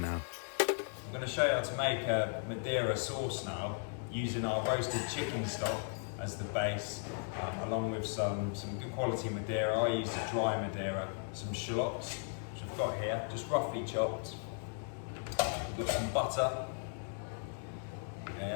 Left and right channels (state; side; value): silent; right; 53 dB below the other